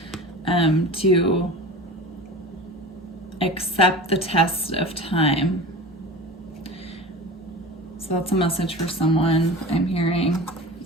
to accept the test of time. So that's a message for someone I'm hearing.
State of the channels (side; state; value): both; normal; correlation 0.34